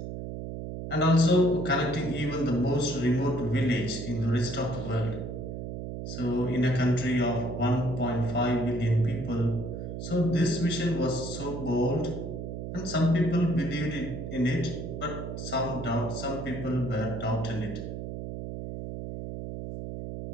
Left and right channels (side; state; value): right; noise; hum, 7 dB below the sound